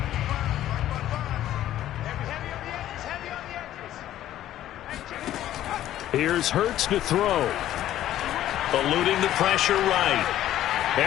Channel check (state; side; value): quieter; right; 12.8 dB